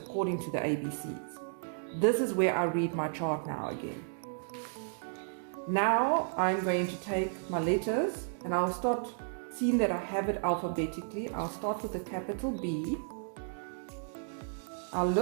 to the ABCs. This is where I read my chart now again. Now I'm going to take my letters and I'll start seeing that I have it alphabetically. I'll start with the capital B. I'll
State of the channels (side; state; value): left; silent; digital silence